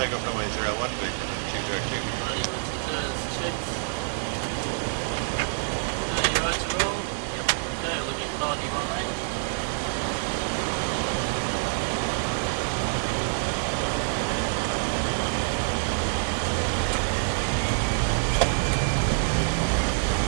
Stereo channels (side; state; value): left; silent; 60 dB below the other